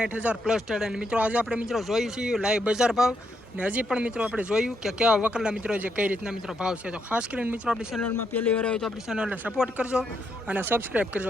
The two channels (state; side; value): normal; both; correlation 0.78